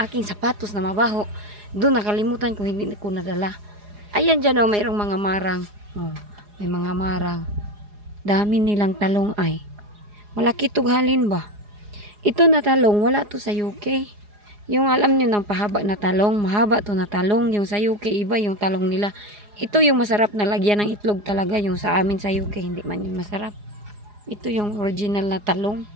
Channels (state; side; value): late; left; 4.8 ms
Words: aking sapatos na mabaho, doon nakalimutan ko, hindi ko nadala. Ayan dyan, oh, mayroong mga marang. Oh, may mga marang. Dami nilang talong ay. Malaki tughalin ba? Ito na talong, wala to sa UK. Yung alam nyo ng pahaba na talong, mahaba to na talong. Yung sa UK, iba yung talong nila. Ito yung masarap na lagyan ng itlog talaga. Yung sa amin sa UK, hindi man yung masarap. Ito yung original na talong.